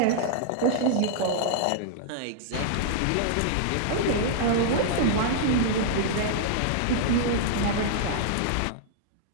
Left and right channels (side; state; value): both; different; correlation -0.01